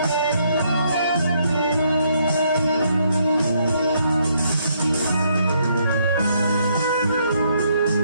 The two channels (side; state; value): both; inverted; correlation -0.72